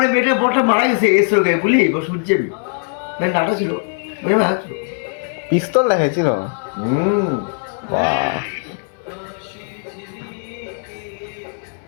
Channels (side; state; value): right; silent; 57 dB below the other